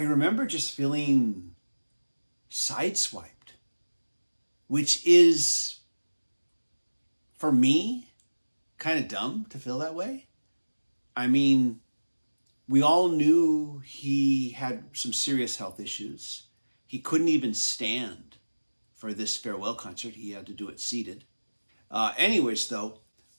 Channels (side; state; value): both; inverted; correlation -1.00